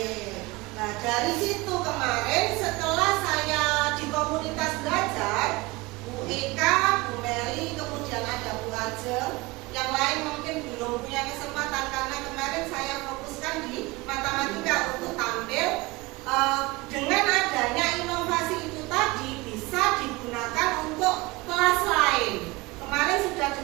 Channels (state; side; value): quieter; left; 22.6 dB